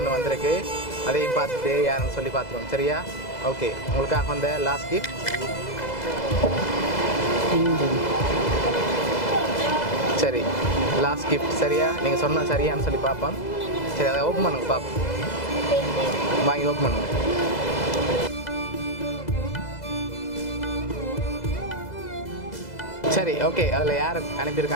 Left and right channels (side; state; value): right; late; 2.0 ms